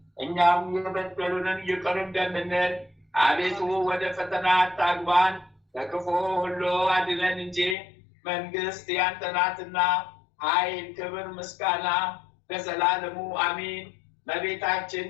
እኛም የበደሉንን ይቅር እንደምንል፣ አቤቱ ወደ ፈተና አታግባን ከክፉ ሁሉ አድነን እንጂ መንግስት ያንተ ናትና ኃይል፣ ክብር፣ ምስጋና ለዘላለሙ አሜን። እመቤታችን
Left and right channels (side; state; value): right; drops out; at 7.8 s